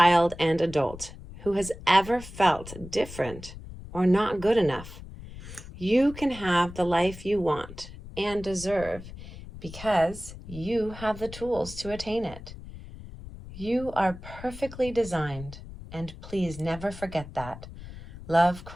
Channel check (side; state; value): left; noise; rumble, 14 dB below the sound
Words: and adult who has ever felt different or not good enough. You can have the life you want and deserve because you have the tools to attain it. You are perfectly designed, and please never forget that. Love,